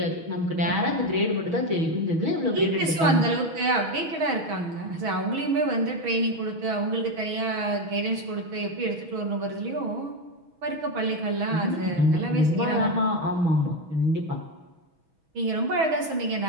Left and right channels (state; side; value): late; left; 6.2 ms